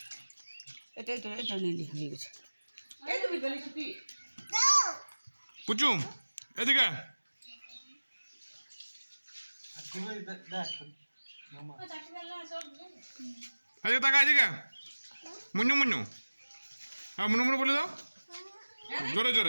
এটা নিলি হয়ে গেছে। পুচু এদিকে এদিকে তাকা এদিকে। মুন্নু মুন্নু, হ্যাঁ মুনু মুনু বলে দাও জোরে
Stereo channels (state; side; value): inverted; both; correlation -1.00